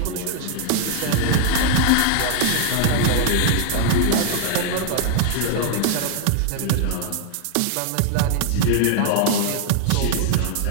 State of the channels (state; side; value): different; both; correlation 0.00